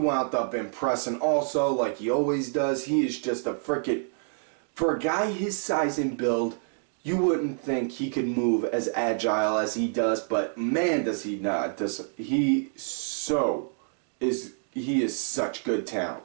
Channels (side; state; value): left; silent; digital silence